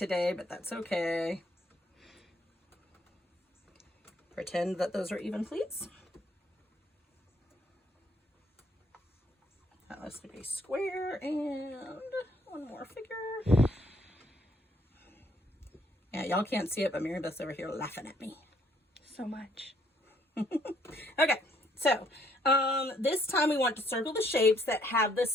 but that's okay. Pretend that those are even, please. That looks like a square and 1 more figure. Yeah, y'all can't see it, but Mary Beth's over here laughing at me. So much. Okay, so this time we want to circle the shapes that have the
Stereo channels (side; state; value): both; normal; correlation 0.67